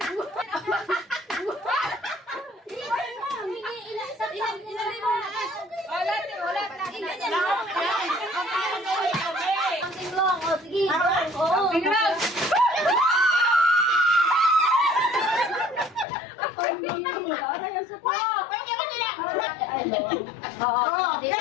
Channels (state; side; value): drops out; right; at 16.1 s